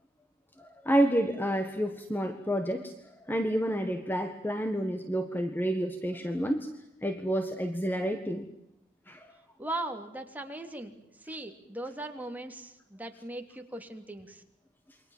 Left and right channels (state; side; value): normal; both; correlation 0.85